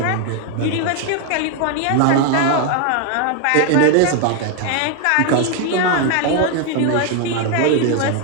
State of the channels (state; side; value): different; both; correlation 0.01